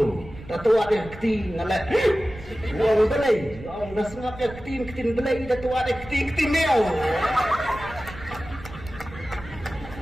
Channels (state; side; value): noise; right; rumble, 15 dB below the sound